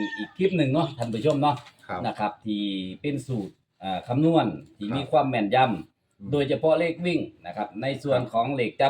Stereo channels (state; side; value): identical; both; correlation 1.00